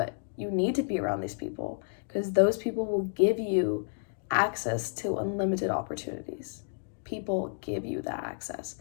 you need to be around these people because those people will give you access to unlimited opportunities. People give you that access.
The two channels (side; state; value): right; silent; digital silence